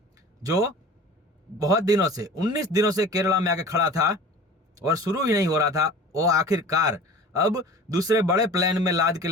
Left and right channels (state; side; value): normal; both; correlation 0.40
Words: जो बहुत दिनों से 19 दिनों से केरला में आके खड़ा था और शुरू ही नहीं हो रहा था, वो आखिरकार अब दूसरे बड़े प्लेन में लाद के